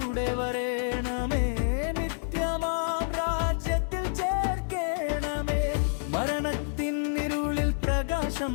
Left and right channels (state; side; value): silent; right; digital silence